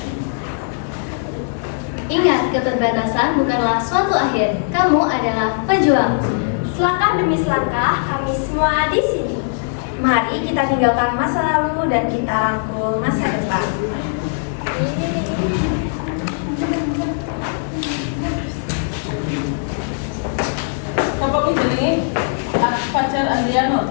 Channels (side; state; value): right; silent; digital silence